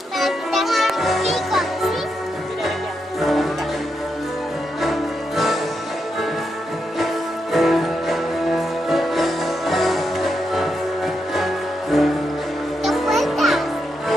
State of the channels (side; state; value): both; normal; correlation 0.83